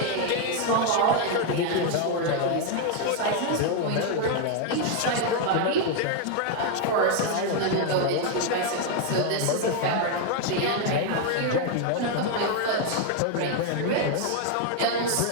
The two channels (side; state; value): both; different; correlation 0.01